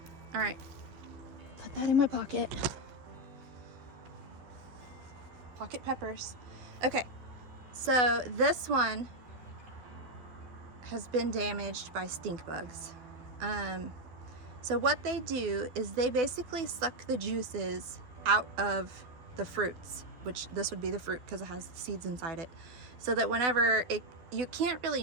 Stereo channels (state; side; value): late; left; 12 ms